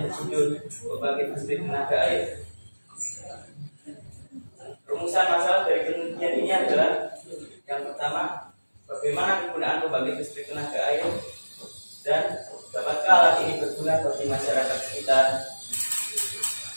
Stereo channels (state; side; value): inverted; both; correlation -1.00